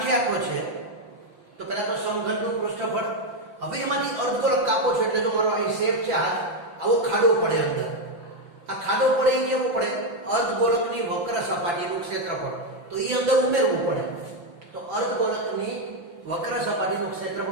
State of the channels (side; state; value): left; late; 5.9 ms